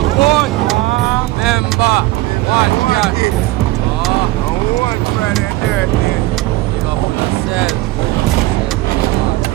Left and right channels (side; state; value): left; quieter; 18.1 dB